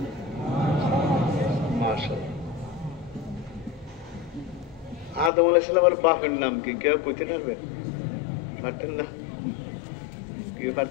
মাশাআল্লাহ, আদম আলাইহিস সালামের বাপের নাম কি? কেউ কইতে পারবে? পারতেন না? কেউ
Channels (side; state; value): right; drops out; at 5.3 s